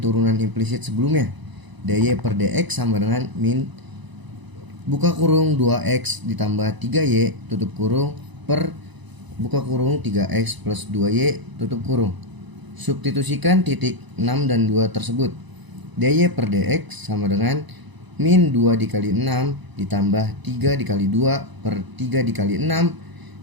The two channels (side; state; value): left; late; 1.0 ms